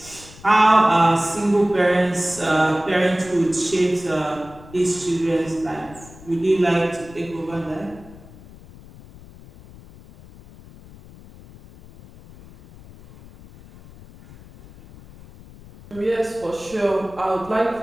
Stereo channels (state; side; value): noise; left; rumble, 20 dB below the sound